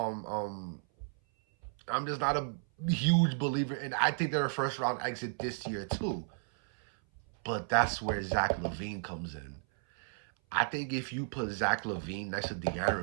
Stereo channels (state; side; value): silent; left; 55 dB below the other